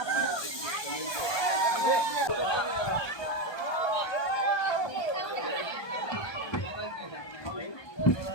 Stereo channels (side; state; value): right; late; 1.2 ms